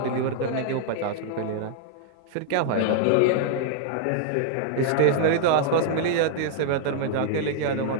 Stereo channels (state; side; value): different; both; correlation -0.01